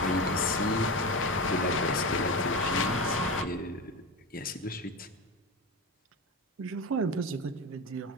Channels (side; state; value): both; normal; correlation 0.22